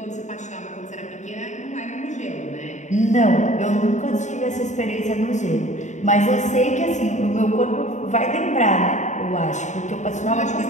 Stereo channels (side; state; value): right; late; 0.34 ms